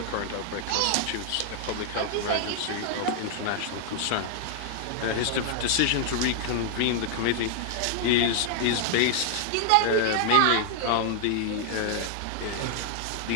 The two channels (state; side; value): different; both; correlation 0.00